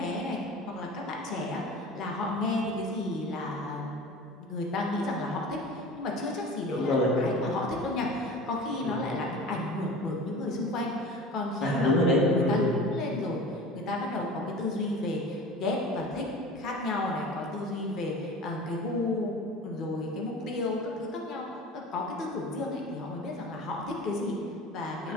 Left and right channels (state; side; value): normal; both; correlation 0.37